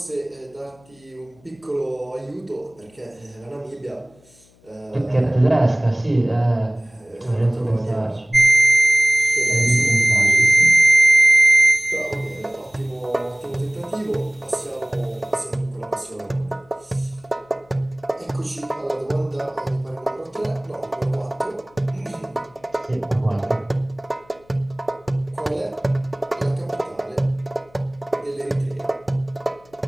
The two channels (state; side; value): noise; left; hum, 30 dB below the sound